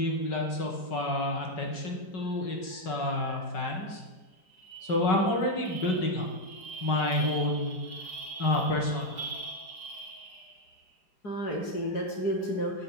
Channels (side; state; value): right; late; 5.3 ms